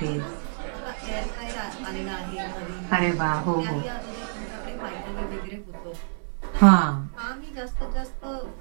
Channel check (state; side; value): silent; left; digital silence